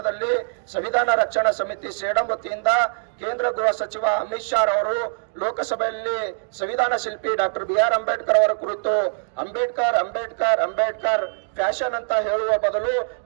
ಸಂವಿಧಾನ ರಕ್ಷಣಾ ಸಮಿತಿ ಸೇಡಂ ವತಿಯಿಂದ ಕೇಂದ್ರ ಗೃಹ ಸಚಿವ ಅಮಿತ್ ಶಾ ಅವರು ಲೋಕಸಭೆಯಲ್ಲಿ ಸಂವಿಧಾನ ಶಿಲ್ಪಿ ಡಾಕ್ಟರ್ BR ಅಂಬೇಡ್ಕರ್ ಅವರ ಕುರಿತು ಅಂಬೇಡ್ಕರ್ ಅಂಬೇಡ್ಕರ್ ಅಂಬೇಡ್ಕರ್ ಫ್ಯಾಷನ್ ಅಂತ ಹೇಳುವ ಬದಲು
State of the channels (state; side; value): silent; left; 61 dB below the other